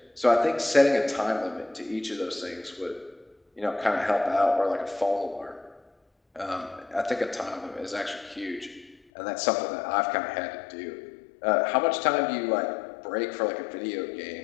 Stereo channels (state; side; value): drops out; right; at 9.0 s